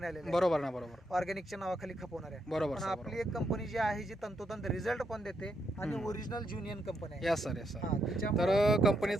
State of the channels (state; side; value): normal; both; correlation 0.79